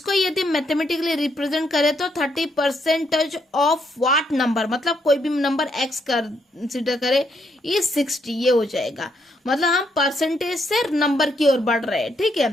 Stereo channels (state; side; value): normal; both; correlation 0.75